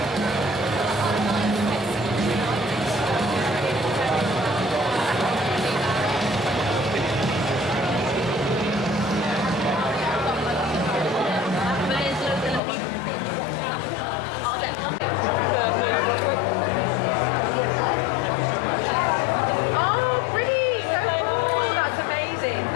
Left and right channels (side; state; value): right; drops out; at 12.6 s